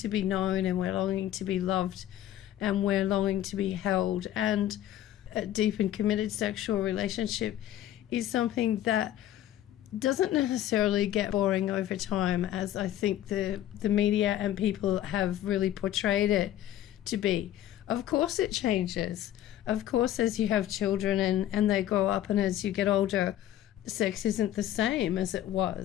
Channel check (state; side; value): quieter; right; 12.4 dB